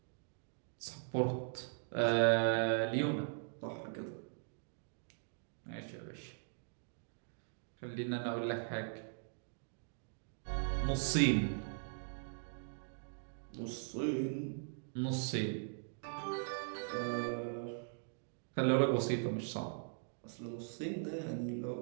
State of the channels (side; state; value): left; silent; digital silence